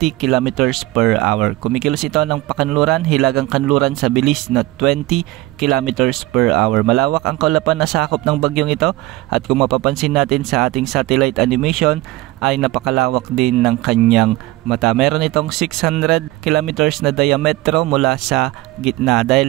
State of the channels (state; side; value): quieter; left; 18.8 dB